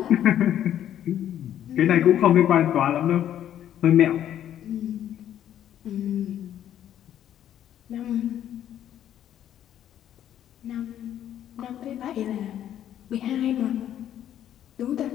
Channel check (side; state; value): right; quieter; 10.9 dB